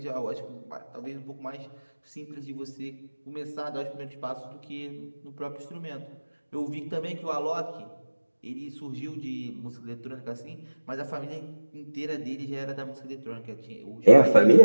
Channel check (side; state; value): both; inverted; correlation -1.00